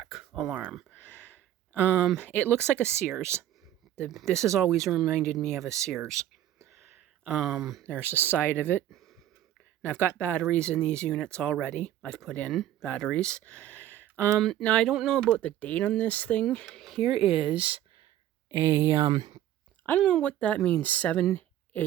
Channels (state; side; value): quieter; left; 12.2 dB